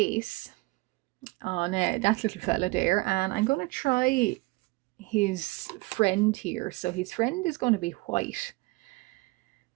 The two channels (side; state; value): left; quieter; 23.7 dB